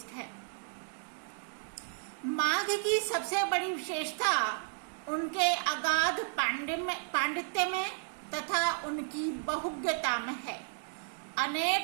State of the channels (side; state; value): left; silent; 56 dB below the other